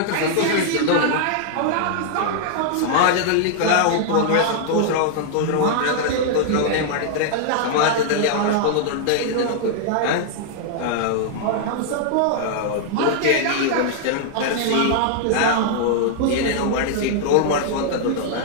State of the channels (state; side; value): different; both; correlation -0.01